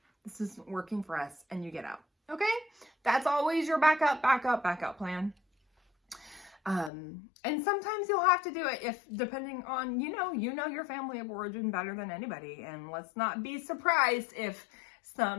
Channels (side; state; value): right; drops out; at 6.9 s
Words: this isn't working for us, and you get out. Okay? That's always your backup plan. And sometimes you'll have to do it if, depending on, you know your family of origin better than anybody. And let's not be surprised if